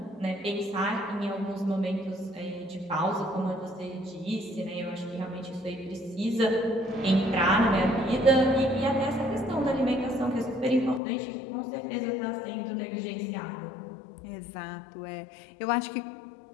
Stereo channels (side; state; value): right; drops out; at 11.0 s